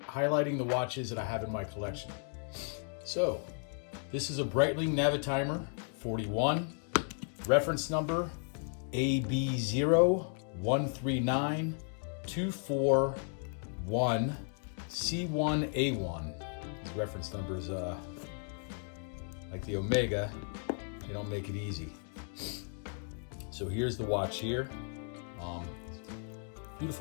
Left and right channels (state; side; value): silent; right; 55 dB below the other